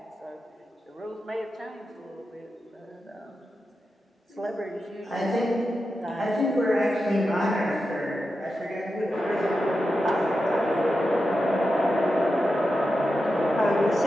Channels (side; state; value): both; normal; correlation 0.90